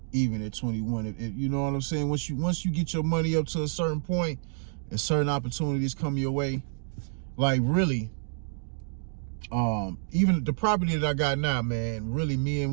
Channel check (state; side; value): silent; left; digital silence